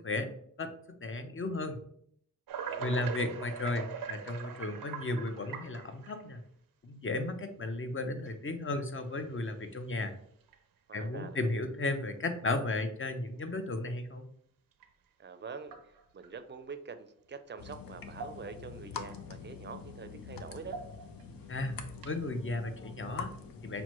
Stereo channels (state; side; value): normal; both; correlation 0.40